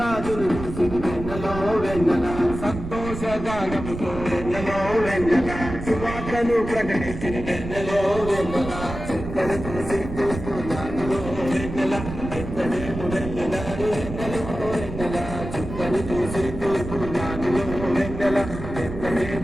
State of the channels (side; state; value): right; noise; rumble, 8 dB below the sound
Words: చూసి వెన్నెలో వెన్నెల సంతోషగానముతో వెన్నెలో వెన్నెల సువార్తను ప్రకటించిన వెన్నెలో వెన్నెల చుక్కలు చూసి చూస్తున్నానులో వెన్నెల ఎత్తడేము వెళ్ళినారు వెన్నెలో వెన్నెల చుక్కలు చూసి చూస్తున్నానులో వెన్నెల